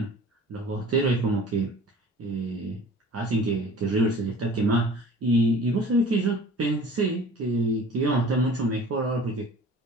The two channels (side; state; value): both; normal; correlation 0.45